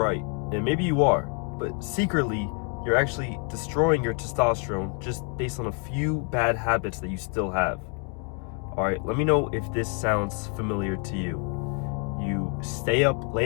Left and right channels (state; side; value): quieter; right; 39.5 dB